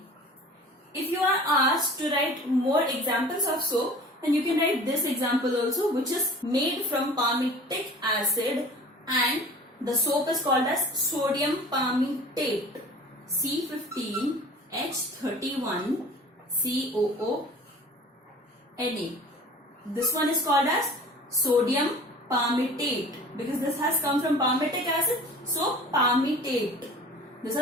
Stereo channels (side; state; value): both; normal; correlation 0.43